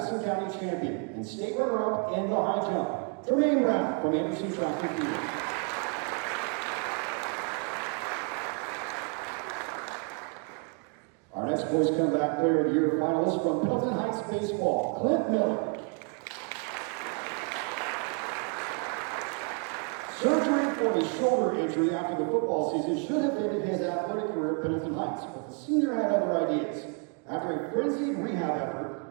County champion and state runner-up in the high jump. Tremaine Brown from Anderson Track and Field. Our next Boys Comeback Player of the Year finalist from Milton Heights Baseball, Clint Miller. Surgery for his shoulder injury after the football season should have ended his athletic career at Pendleton Heights, but the senior had other ideas. After a frenzied rehab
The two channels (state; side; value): quieter; left; 37.1 dB